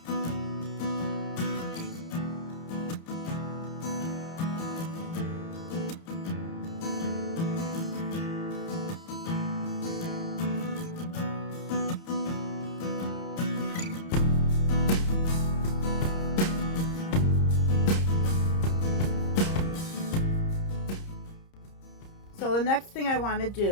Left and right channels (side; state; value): right; late; 30 ms